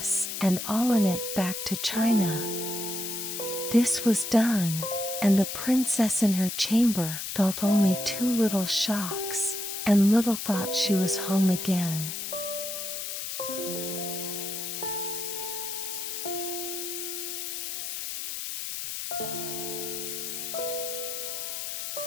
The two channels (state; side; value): noise; left; hiss, 5 dB below the sound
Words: and all in it back to China. This was done, and the princess in her chamber felt only 2 little shocks, and little thought she was home again.